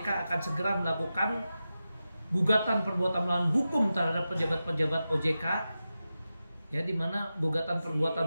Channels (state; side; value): inverted; both; correlation -0.92